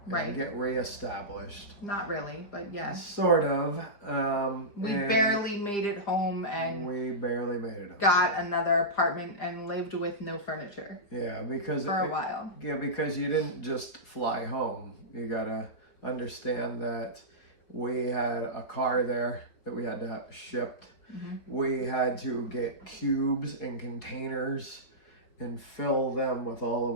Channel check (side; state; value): right; late; 4.6 ms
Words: And get reestablished. Not really, but yes. Sort of. We barely made it home, and we barely made it home. Got another apartment and lived with no furniture. Yeah, because for a while. Yeah, because you didn't just fly home. You gotta understand that we had a car there that we had to have shipped. We had to get cubes and containers and fill them with all of